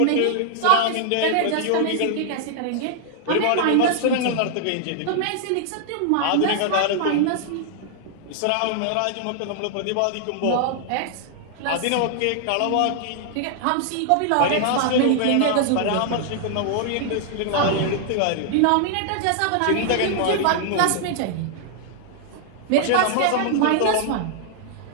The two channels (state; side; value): different; both; correlation -0.01